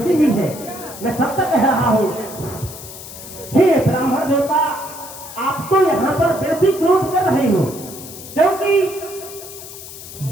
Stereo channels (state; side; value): noise; left; hiss, 14 dB below the sound